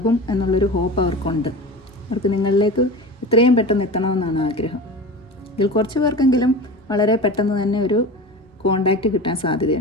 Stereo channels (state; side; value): normal; both; correlation 0.31